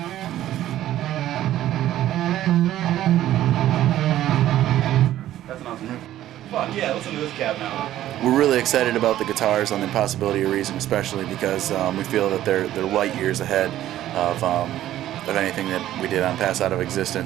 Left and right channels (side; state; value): left; quieter; 13.1 dB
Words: That's an awesome riff. Fuck yeah, listen to this cab now. We're really excited about the guitars on the Impossibility of Reason, especially because we feel that they're light years ahead of anything that we did on Pass Out of